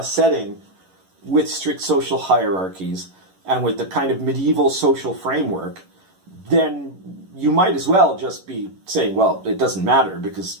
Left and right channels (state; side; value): late; left; 11 ms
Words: setting with strict social hierarchies and with the kind of medieval social framework, then you might as well just be saying, well, it doesn't matter because